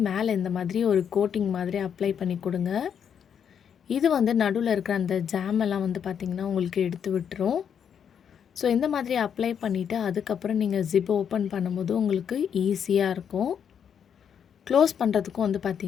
மேலே இந்த மாதிரி ஒரு கோட்டிங் மாதிரி அப்ளை பண்ணி கொடுங்க. இது வந்து நடுவில் இருக்கிற அந்த ஜாமெல்லாம் வந்து பார்த்திங்கன்னா உங்களுக்கு எடுத்து விட்டுரும். ஸோ இந்த மாதிரி அப்ளை பண்ணிவிட்டு அதுக்கப்புறம் நீங்கள் ஜிப்பை ஓப்பன் பண்ணும்போது உங்களுக்கு ஈஸியாக இருக்கும். க்ளோஸ் பண்ணுறதுக்கும் வந்து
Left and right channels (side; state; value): right; quieter; 8.0 dB